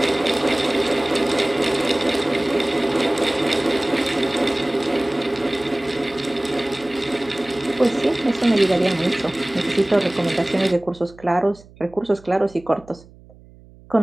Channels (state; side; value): noise; right; hum, 24 dB below the sound